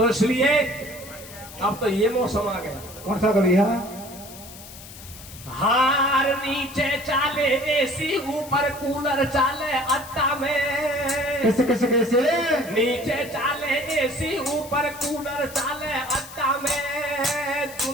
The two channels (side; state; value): left; noise; hiss, 16 dB below the sound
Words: इसलिए अब तो ये मौसम आ गया। कौन सा कभी है? हार नीचे चाले एसी ऊपर कूलर चाले अट्टा में। कैसे कैसे कैसे? नीचे चाले एसी ऊपर कूलर चाले अट्टा में।